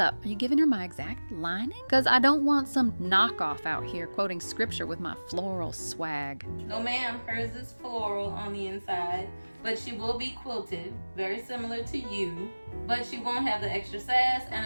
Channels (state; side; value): inverted; both; correlation -1.00